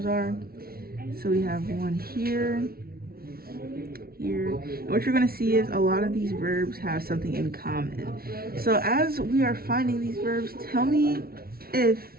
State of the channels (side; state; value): left; late; 0.44 ms